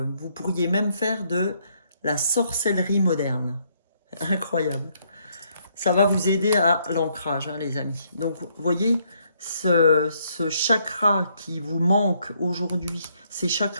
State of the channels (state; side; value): inverted; both; correlation -0.71